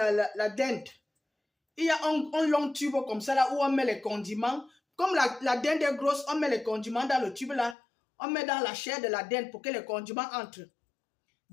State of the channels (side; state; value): right; drops out; at 7.8 s